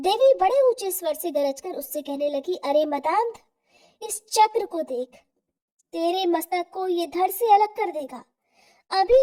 बड़े ऊंचे स्वर से गरजकर उससे कहने लगी, अरे मदांध, इस चक्र को देख, तेरे मस्तक को ये धड़ से अलग कर देगा।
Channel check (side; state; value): both; identical; correlation 1.00